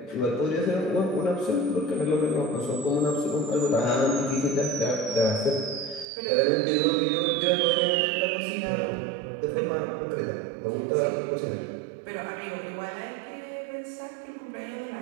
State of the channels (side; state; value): left; drops out; at 6.1 s